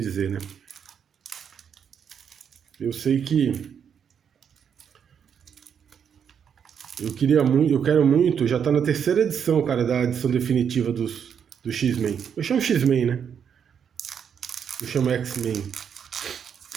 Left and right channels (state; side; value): quieter; left; 7.7 dB